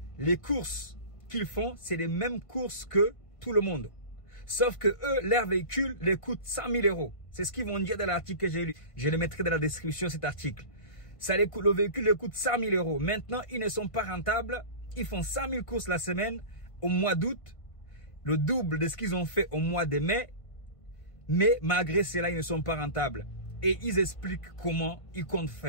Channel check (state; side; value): late; right; 1.6 ms